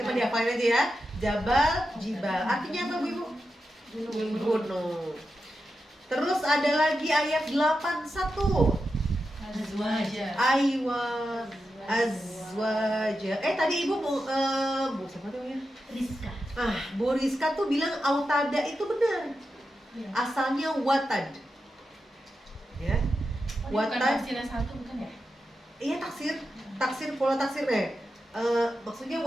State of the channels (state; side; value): normal; both; correlation 0.89